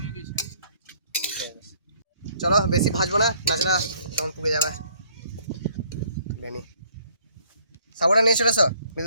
চলো বেশি ভাজবো না, নাচনা তখন পুড়ে যাবে। বেনি সাবুটা নিয়ে চলে এসো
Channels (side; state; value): both; inverted; correlation -0.62